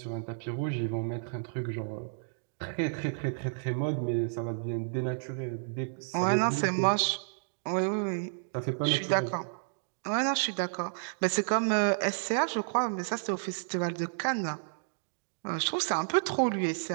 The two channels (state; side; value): silent; left; digital silence